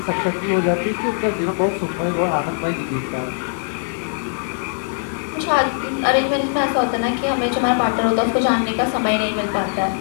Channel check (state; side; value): silent; right; 65 dB below the other